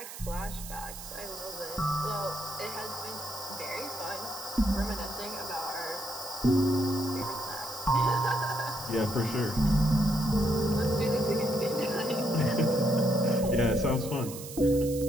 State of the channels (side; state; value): right; noise; hiss, 12 dB below the sound